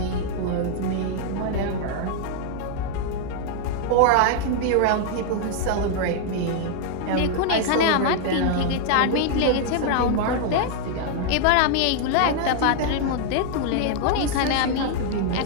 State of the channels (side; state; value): both; different; correlation 0.00